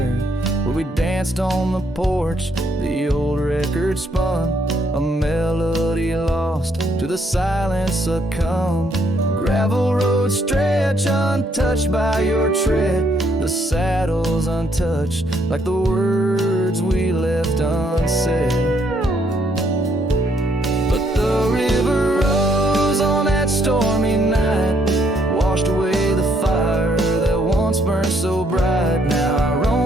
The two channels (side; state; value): both; normal; correlation 0.71